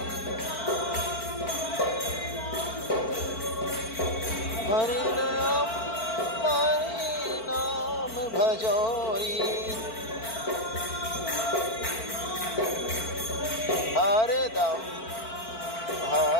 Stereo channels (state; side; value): late; right; 4.5 ms